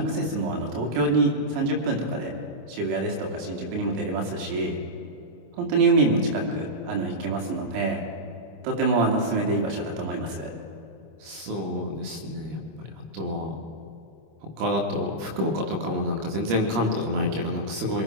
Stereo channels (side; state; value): left; late; 25 ms